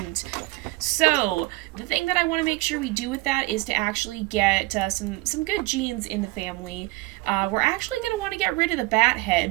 So the thing that I want to make sure we do with that is to actually get some good genes in the family. We're actually going to want to get rid of the bat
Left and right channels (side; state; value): left; quieter; 21.4 dB